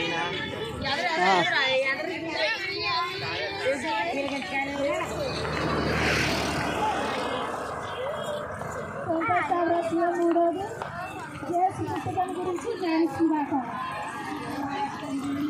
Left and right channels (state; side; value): identical; both; correlation 1.00